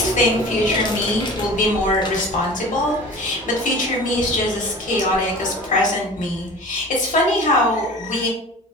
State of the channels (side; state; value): both; normal; correlation 0.39